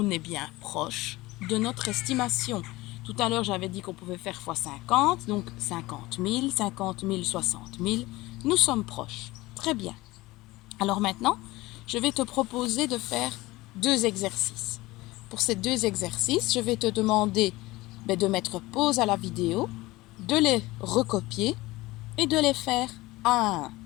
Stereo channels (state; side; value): quieter; right; 19.8 dB